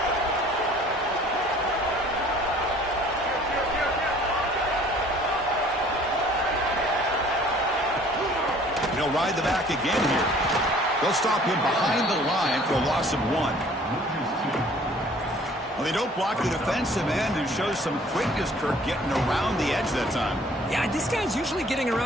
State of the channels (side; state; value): both; normal; correlation 0.54